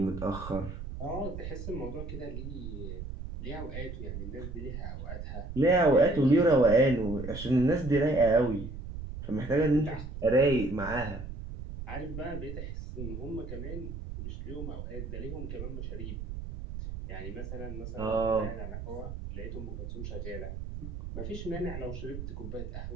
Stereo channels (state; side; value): noise; right; rumble, 8 dB below the sound